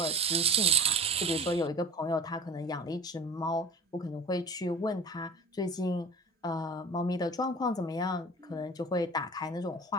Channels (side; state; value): both; normal; correlation 0.37